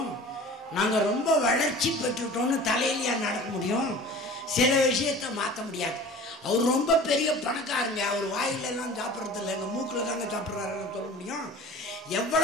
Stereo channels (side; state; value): both; normal; correlation 0.42